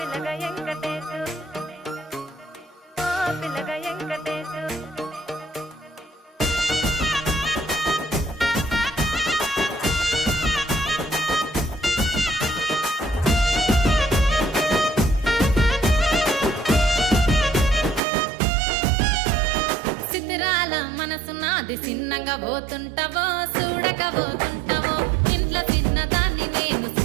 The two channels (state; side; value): drops out; left; at 18.0 s